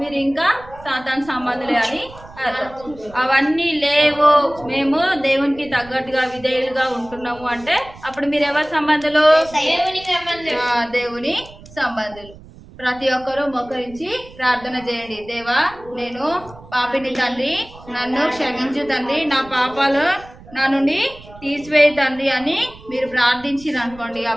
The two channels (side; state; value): right; noise; rumble, 20 dB below the sound